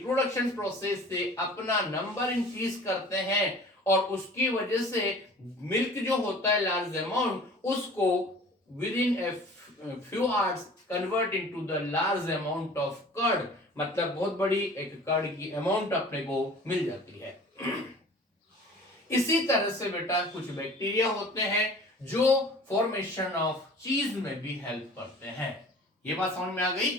प्रोसेस से अपना नंबर इंक्रीज करते हैं, और उसकी वजह से मिल्क जो होता है लार्ज अमाउंट, उसको within a few hours convert into the large amount of curd, मतलब बहुत बड़ी एक कर्ड की अमाउंट अपने को मिल जाती है। इसी तरह से बेटा कुछ बैक्टीरिया होते हैं जो फॉर्मेशन ऑफ चीज में भी हेल्प करते हैं। ये बात समझ में आ गई।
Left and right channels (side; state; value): both; normal; correlation 0.45